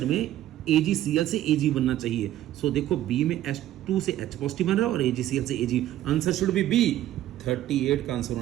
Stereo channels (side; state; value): left; quieter; 13.2 dB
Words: में AgCl से Ag बनना चाहिए। सो देखो बी में H2 से H पॉजिटिव बन रहा है और AgCl से Ag। Answer should be B. 38 का आंसर